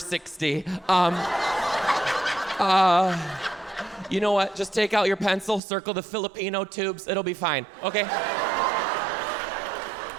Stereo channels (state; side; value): drops out; left; at 5.6 s